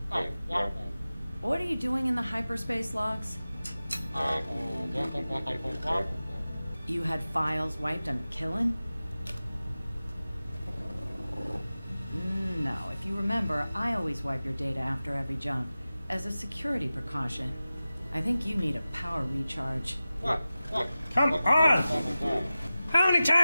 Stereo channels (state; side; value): inverted; both; correlation -0.96